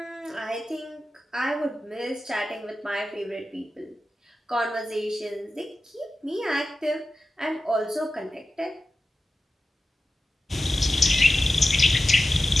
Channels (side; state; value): both; normal; correlation 0.93